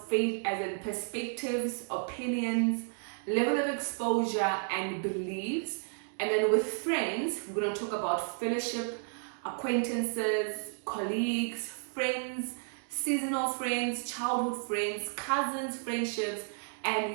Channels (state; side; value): silent; left; 56 dB below the other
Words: faith as in perspectives, opinions, level of exposure, and beliefs. And then with friends, we're gonna talk about fellowship, acquaintances, colleagues, friends, seasonal friends, childhood friends, cousins, friendships, and